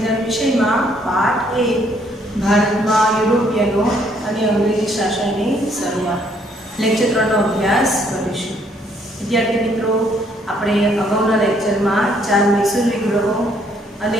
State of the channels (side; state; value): both; normal; correlation 0.67